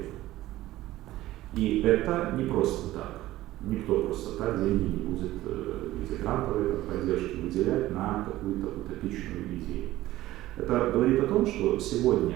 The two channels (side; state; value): left; quieter; 15.9 dB